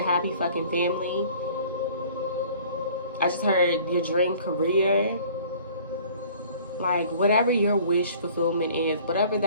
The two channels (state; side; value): inverted; both; correlation -0.51